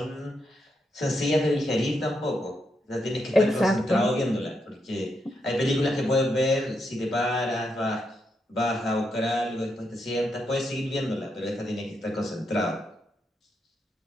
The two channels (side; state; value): both; normal; correlation 0.81